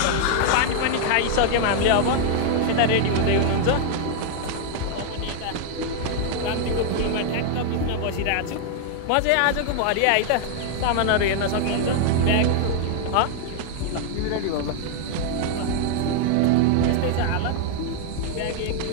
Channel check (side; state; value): both; different; correlation 0.00